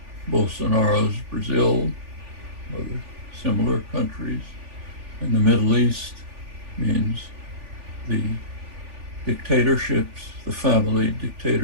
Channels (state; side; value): late; left; 3.4 ms